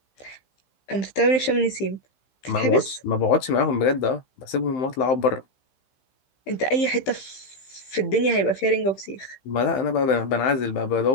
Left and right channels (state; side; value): late; right; 15 ms